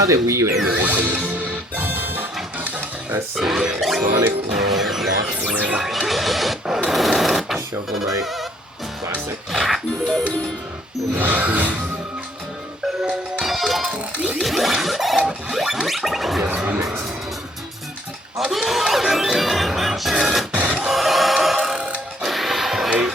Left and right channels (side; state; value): both; normal; correlation 0.65